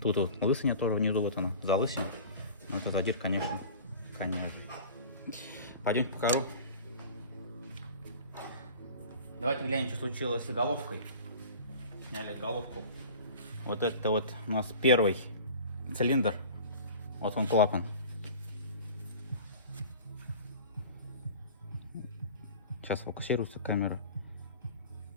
Тут вот лысыня тоже внизу, вот она, за лысину. Но это задир, конечно. Пойдем покажу. Давайте глянем, что случилось с головкой. Сняли головку. Вот это вот у нас первый цилиндр. Вот он клапан. Сейчас фокусируется камера.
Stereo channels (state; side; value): inverted; both; correlation -0.40